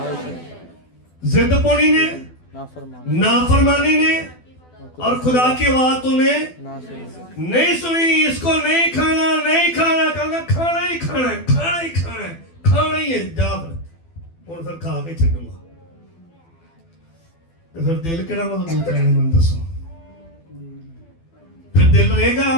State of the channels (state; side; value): late; right; 12 ms